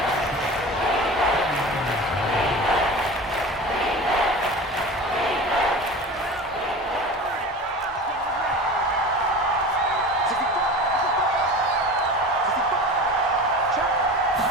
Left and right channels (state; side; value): normal; both; correlation 0.34